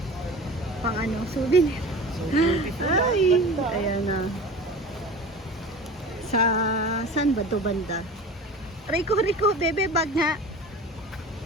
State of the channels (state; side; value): normal; both; correlation 0.36